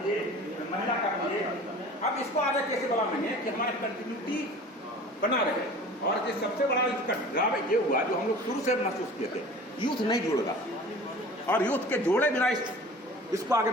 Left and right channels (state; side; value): normal; both; correlation 0.42